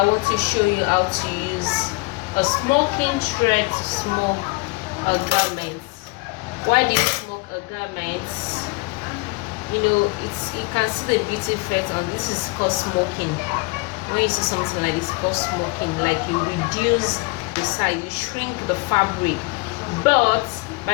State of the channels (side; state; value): right; quieter; 26.6 dB